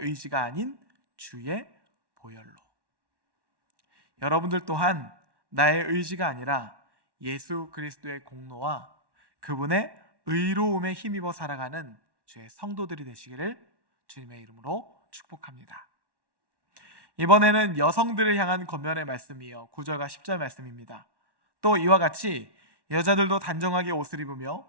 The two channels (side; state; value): left; late; 1.1 ms